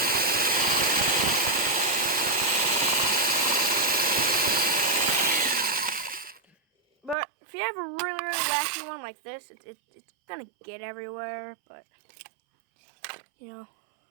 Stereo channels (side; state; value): left; drops out; at 7.2 s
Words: have a really, really wacky one like this, it's gonna get everywhere, but, you know,